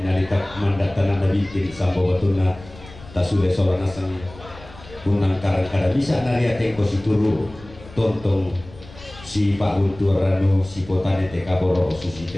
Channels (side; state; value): left; noise; rumble, 19 dB below the sound